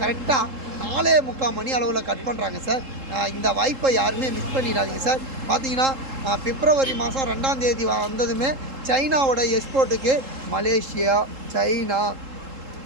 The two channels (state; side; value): late; left; 3.7 ms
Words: கரெக்டாக 4:45 மணி அளவில் கட் பண்ணுறாங்க சார். இந்த வாய்ப்பை யாருமே மிஸ் பண்ணிடாதீங்க சார். பார்த்தீங்கன்னா பிப்ரவரி மாதம் 2ஆம் தேதி வந்ததுமே சைனாவோட எக்ஸ்போர்ட்டுக்கு மலேசியா, சைனா,